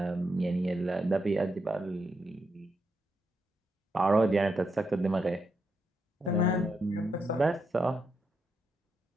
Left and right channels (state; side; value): normal; both; correlation 0.82